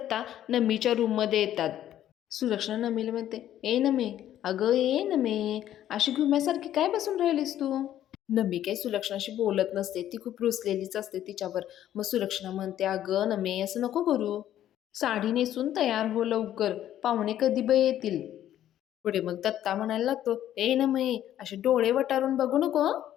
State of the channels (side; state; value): right; quieter; 11.8 dB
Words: नमीच्या रूममध्ये येतात. सुलक्षणा नमीला म्हणते, ए नमे, अगं ए नमे, अशी घुम्यासारखी काय बसून राहिलीस तू? नमी काही सुलक्षणाशी बोलत नसते, ती खूप रुसलेलीच असते तिच्यावर. मग सुलक्षणा म्हणते, अगं नमे, असं नको करू. साडी नेसून तयार हो लवकर, पाहुणे कधी बाई येतील. पुढे मग दत्ता म्हणायला लागतो, ए नमे, असे डोळे वटारून बघू नको हं.